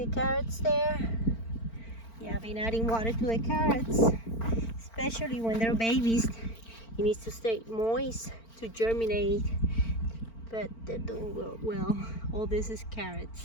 the carrots there? Yeah, I've been adding water to the carrots, especially when they're babies. It needs to stay moist to germinate, but they're doing well. All this is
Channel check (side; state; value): right; late; 4.4 ms